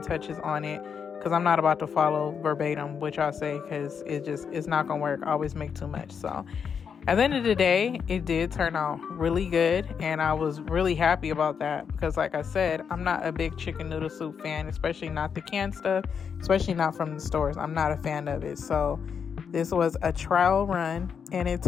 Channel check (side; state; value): right; quieter; 6.8 dB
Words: touches on it, because I'm not about to follow verbatim what y'all say, because it's not gonna work. I always make too much. So at the end of the day, it did turn out really good, and I was really happy about that because, like I said, I'm not a big chicken noodle soup fan, especially not the canned stuff, especially not from the stores. I'm not a fan of it. So this was a trial run, and it